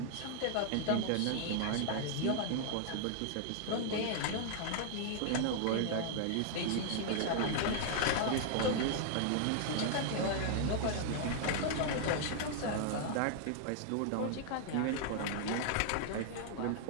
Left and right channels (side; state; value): both; different; correlation -0.01